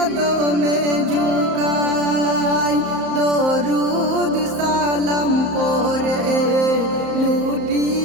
ঝুঁকায়, দরুদ সালাম পরে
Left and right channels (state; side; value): late; left; 34 ms